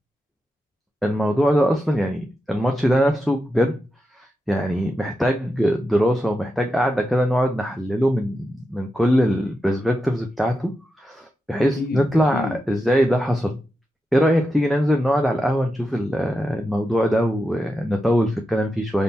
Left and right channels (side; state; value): both; normal; correlation 0.88